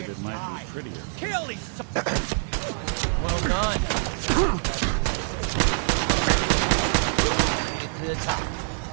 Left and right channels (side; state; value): left; silent; 62 dB below the other